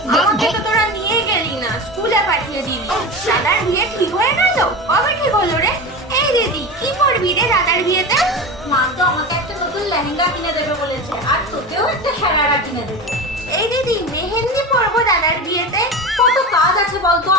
আমাকে তো তোরা নিয়ে গেলি না, স্কুলে পাঠিয়ে দিলি। দাদার বিয়ে ঠিক হয়ে গেল? কবে ঠিক হলো রে? এই দিদি, কি করবি রে দাদার বিয়েতে? মা তো আমাকে একটা নতুন লেহেঙ্গা কিনে দেবে বলেছে, আর তোকেও একটা সারারা কিনে দেবে। এই দিদি, মেহেন্দি পরবো দাদার বিয়েতে। কত কাজ আছে বলতো,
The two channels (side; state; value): both; normal; correlation 0.26